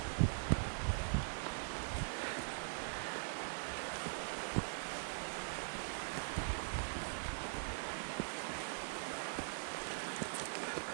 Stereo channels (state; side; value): silent; left; digital silence